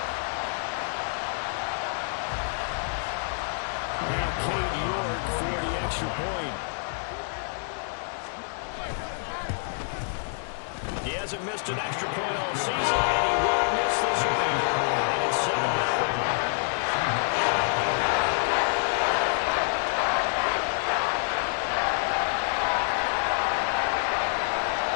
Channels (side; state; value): right; silent; 60 dB below the other